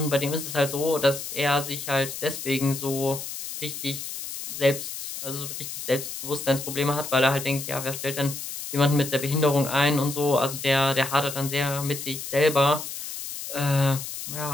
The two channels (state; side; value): noise; left; hiss, 8 dB below the sound